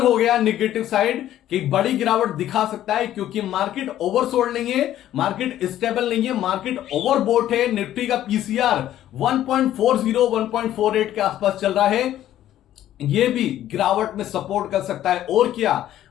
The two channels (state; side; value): quieter; right; 12.5 dB